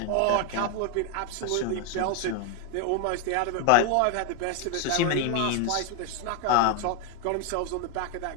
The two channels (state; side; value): different; both; correlation 0.01